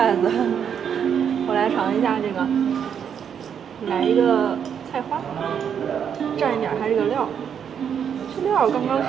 子。我来尝一下这个，来一个菜花，蘸一点它这个料。这料刚刚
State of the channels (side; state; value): left; quieter; 8.0 dB